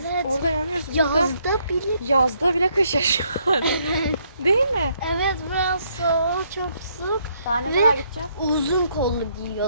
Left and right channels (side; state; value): both; inverted; correlation -0.71